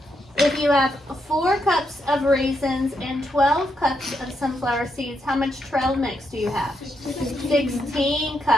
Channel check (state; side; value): normal; both; correlation 0.80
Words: If you have 4 cups of raisins and 12 cups of sunflower seeds, how much trail mix do you have? 16